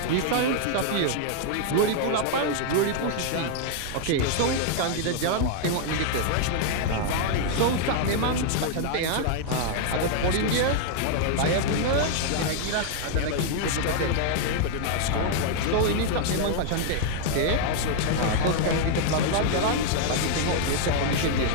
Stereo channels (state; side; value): different; both; correlation 0.00